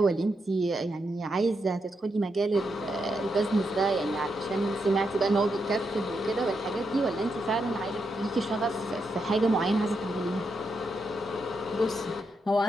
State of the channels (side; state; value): both; normal; correlation 0.83